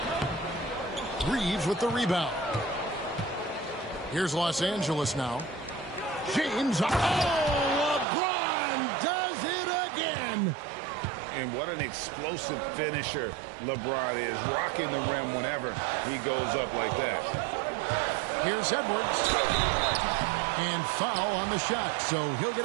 Reeves with the rebound. Here's Los Angeles now. James. Oh, LeBron does it again. And what an explosive finisher LeBron is, rocking the rim whenever he goes up like that. Here's Edwards. And foul on the shot, so he'll get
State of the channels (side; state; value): left; drops out; at 8.1 s